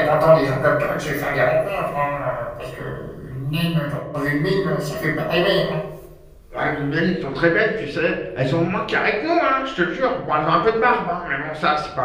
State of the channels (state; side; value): identical; both; correlation 1.00